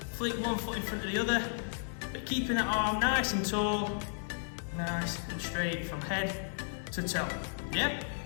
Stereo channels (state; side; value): silent; right; digital silence